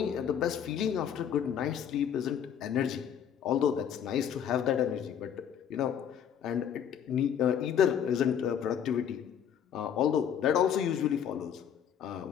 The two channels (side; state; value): right; quieter; 8.7 dB